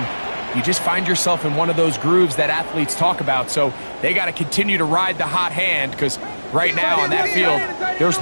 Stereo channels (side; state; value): both; inverted; correlation -1.00